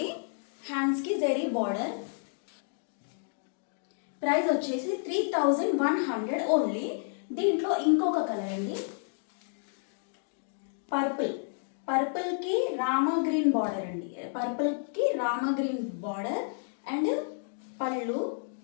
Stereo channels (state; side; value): silent; right; digital silence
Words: హ్యాండ్స్కి జరీ బార్డర్. ప్రైస్ వచ్చేసి 3100 ఓన్లీ. దీంట్లో ఇంకొక కలర్ అండి, పర్పుల్కి రామా గ్రీన్ బార్డర్ అండి. పర్పుల్కి రామా గ్రీన్ బార్డర్ అండ్ పళ్ళు,